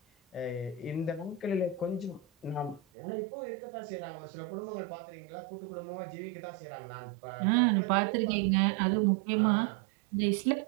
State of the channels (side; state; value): left; drops out; at 2.8 s